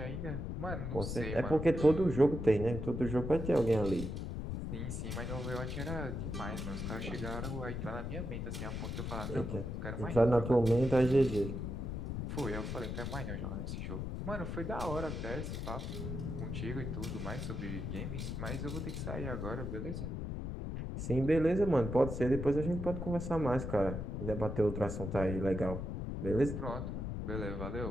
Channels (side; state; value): left; noise; rumble, 4 dB below the sound